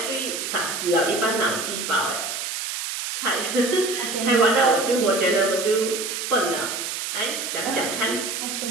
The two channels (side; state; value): right; noise; hiss, 4 dB below the sound